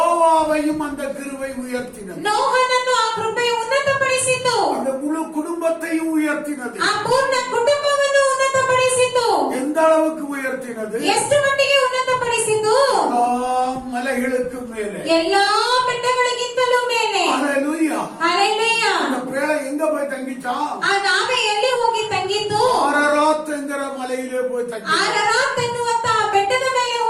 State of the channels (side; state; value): both; identical; correlation 1.00